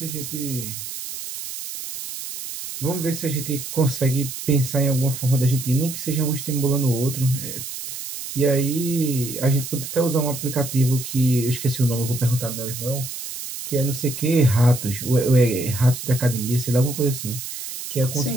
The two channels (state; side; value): noise; right; hiss, 8 dB below the sound